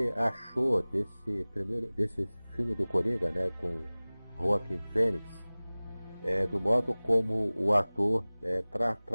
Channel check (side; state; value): both; inverted; correlation -0.99